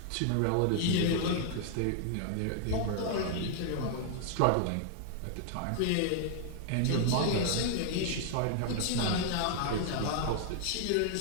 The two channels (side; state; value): both; different; correlation 0.00